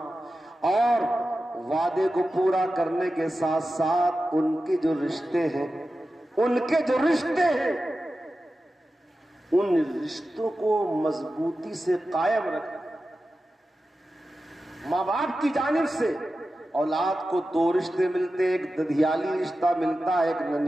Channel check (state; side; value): normal; both; correlation 0.93